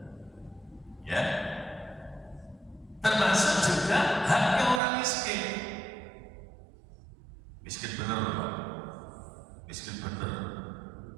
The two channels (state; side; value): drops out; left; at 4.8 s